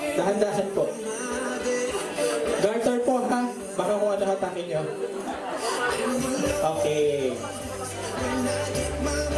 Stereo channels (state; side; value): identical; both; correlation 1.00